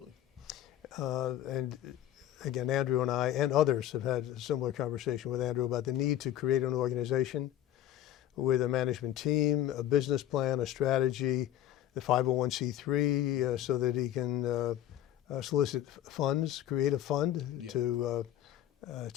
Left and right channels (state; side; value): quieter; right; 12.2 dB